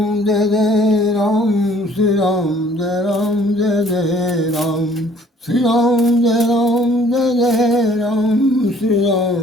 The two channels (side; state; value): both; normal; correlation 0.57